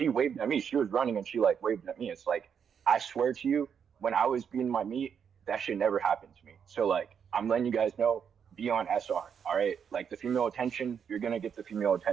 waved at me. She was running and she like waved at me. It's like, I swear to you, when I was being my meat, that shit never happened to me. So like, I'm letting you guys know, be on SR, all right? Like the female attention, you're gonna get the female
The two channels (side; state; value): left; quieter; 7.4 dB